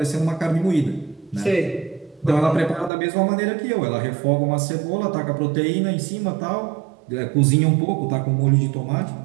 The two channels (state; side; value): drops out; left; at 2.9 s